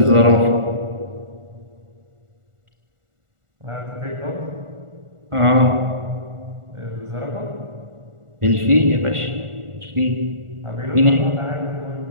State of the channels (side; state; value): left; late; 1.4 ms